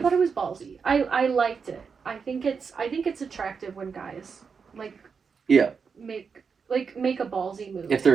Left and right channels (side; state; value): left; quieter; 5.7 dB